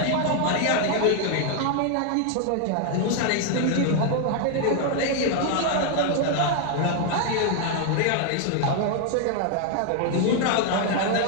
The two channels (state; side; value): different; both; correlation 0.00